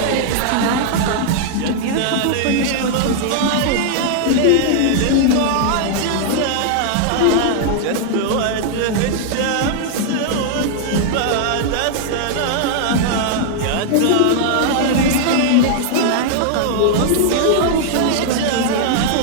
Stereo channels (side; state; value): both; different; correlation -0.01